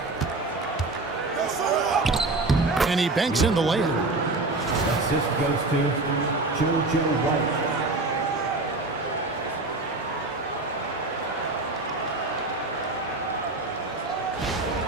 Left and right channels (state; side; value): quieter; left; 3.2 dB